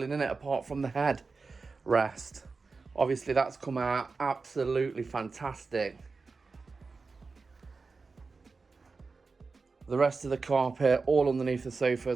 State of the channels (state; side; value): quieter; left; 4.3 dB